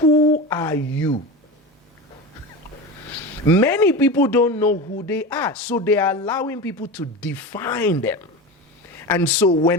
are you? Many people don't know who they are, so they are allowing people to define them. And so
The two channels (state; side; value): normal; both; correlation 0.26